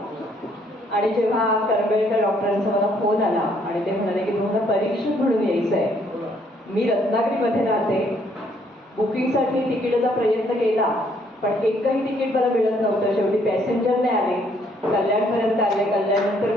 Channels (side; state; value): both; normal; correlation 0.67